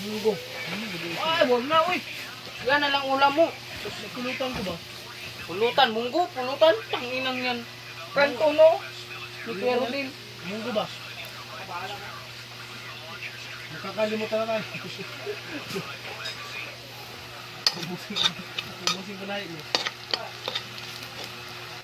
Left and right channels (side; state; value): both; identical; correlation 1.00